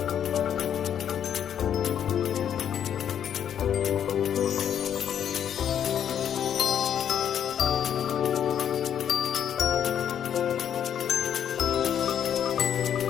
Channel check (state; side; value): quieter; right; 9.2 dB